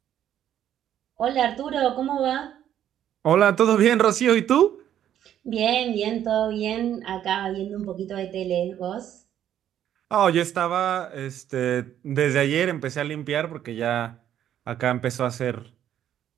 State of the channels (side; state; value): left; quieter; 10.7 dB